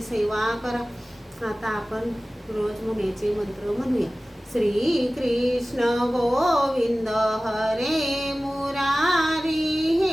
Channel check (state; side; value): normal; both; correlation 0.97